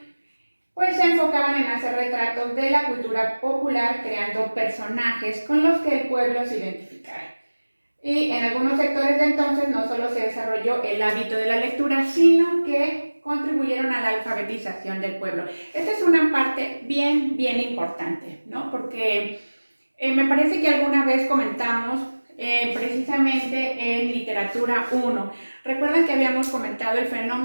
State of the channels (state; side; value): inverted; both; correlation -1.00